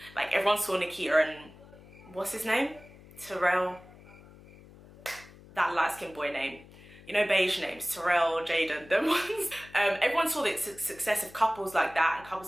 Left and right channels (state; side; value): noise; left; hum, 21 dB below the sound